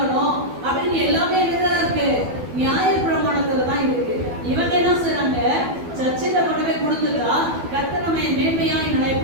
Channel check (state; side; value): late; left; 12 ms